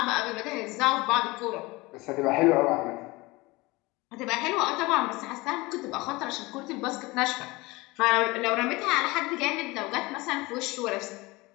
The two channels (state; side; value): quieter; right; 22.4 dB